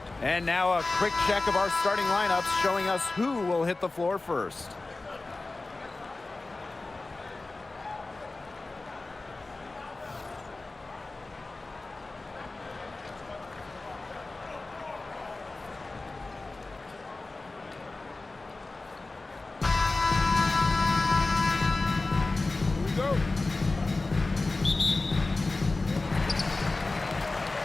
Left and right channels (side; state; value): right; quieter; 3.3 dB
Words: And now a quick check of our starting lineups showing us who will hit the floor first.